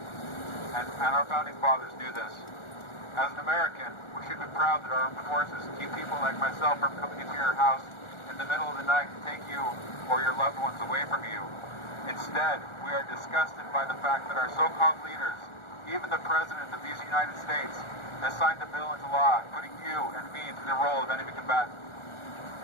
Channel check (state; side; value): late; right; 1.4 ms